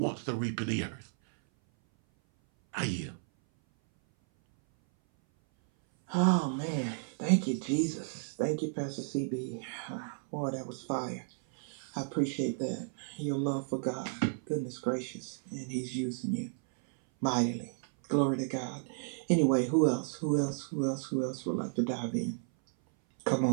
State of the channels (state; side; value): silent; left; 56 dB below the other